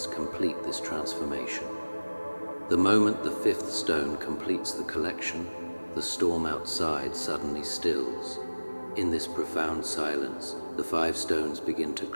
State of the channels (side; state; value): both; inverted; correlation -1.00